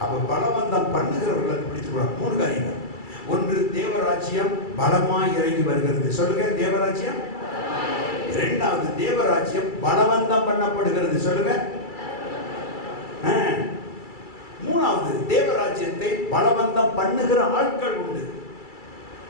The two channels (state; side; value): late; right; 2.3 ms